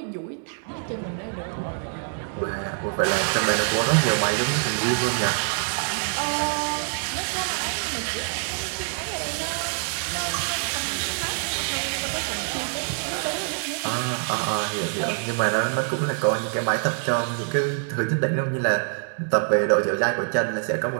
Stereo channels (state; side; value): silent; left; 62 dB below the other